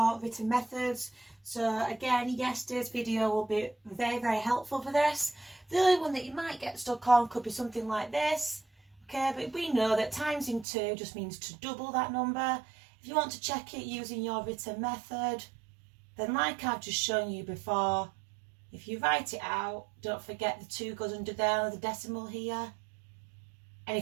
written methods. So again, yesterday's video will be very, very helpful for this. The only one that you might get stuck on could be something like this. Okay, but we know that times in 2 just means to double that number. If you want to check it using your written method, then like I've just shown you before, if you write it out, don't forget the 2 goes under there, the decimal here. And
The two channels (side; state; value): left; drops out; at 10.7 s